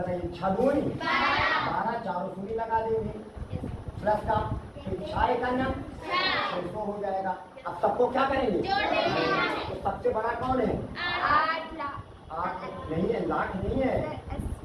6 दूनी 12 4 शून्य लगा देंगे, प्लस का 6 का नाम 600 हो जाएगा। अब सबको क्या करेंगे, तो सबसे बड़ा कौन है, 8 नहीं है, लाख नहीं है,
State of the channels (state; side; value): identical; both; correlation 1.00